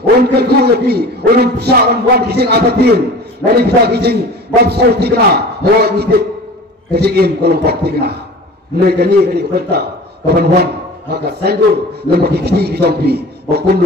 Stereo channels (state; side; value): normal; both; correlation 0.39